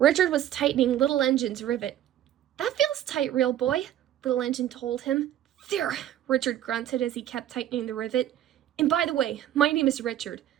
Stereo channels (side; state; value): left; quieter; 11.8 dB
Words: was tightening Little Engine's rivet. That feels tight, real boy, Little Engine told him. There, Richard grunted as he kept tightening the rivet. And by the way, my name is Richard.